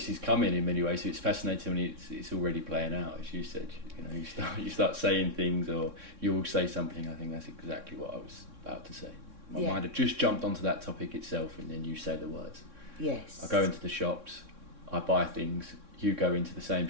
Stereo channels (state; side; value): late; left; 3.6 ms